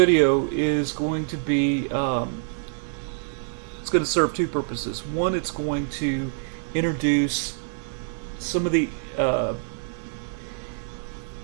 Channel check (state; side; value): silent; left; digital silence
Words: is going to be, it's going to serve two purposes. One, it's going to introduce some of the